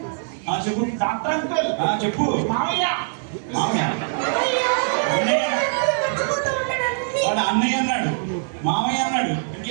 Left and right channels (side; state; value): left; silent; 64 dB below the other